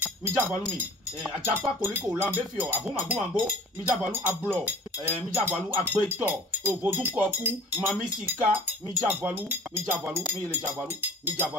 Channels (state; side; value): normal; both; correlation 0.44